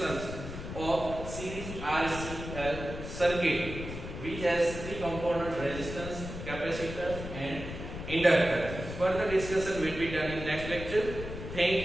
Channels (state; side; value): noise; left; rumble, 8 dB below the sound